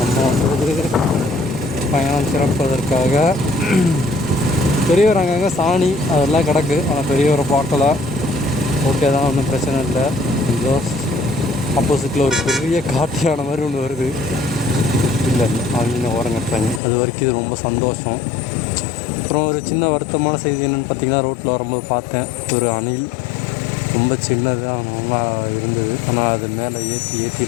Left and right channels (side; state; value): right; drops out; at 16.8 s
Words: வந்து பயணம் சிறப்பதற்காக. பெரியவர் அங்கங்கே சாணி அதெல்லாம் கிடக்கு, ஆனால் பெரியவரை பார்க்கல. ஓகே தான், ஒன்றும் பிரச்சனை இல்லை. இதோ ஆப்போசிட்டில் ஒரு பெரிய காட்டியான மாதிரி ஒன்று வருது. இல்லை அவங்க ஓரங்கட்டுறாங்க, அது வரைக்கும் இது ரொம்ப சந்தோஷம். அப்புறம் ஒரு சின்ன வருத்தமான செய்தி என்னென்னு பார்த்தீங்கன்னா, ரோட்டில் வரும்போது பார்த்தேன் ஒரு அணில். ரொம்ப சின்னதாக நல்லா இருந்தது, ஆனால் அது மேலே